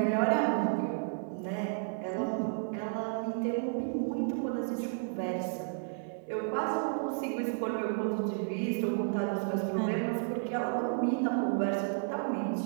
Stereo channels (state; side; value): silent; left; digital silence